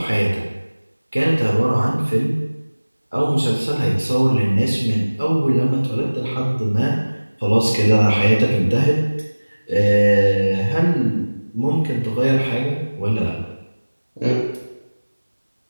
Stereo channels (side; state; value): both; inverted; correlation -1.00